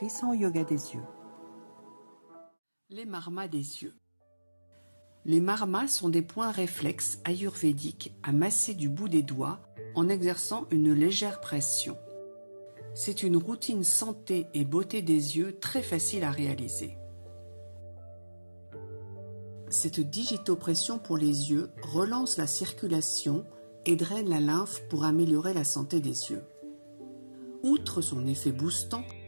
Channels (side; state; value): both; inverted; correlation -1.00